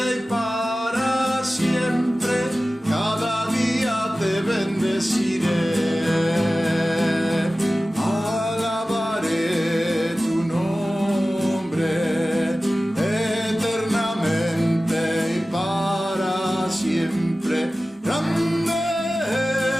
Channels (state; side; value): normal; both; correlation 0.96